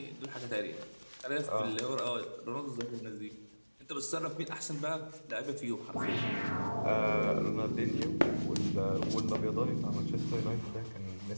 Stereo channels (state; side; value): inverted; both; correlation -1.00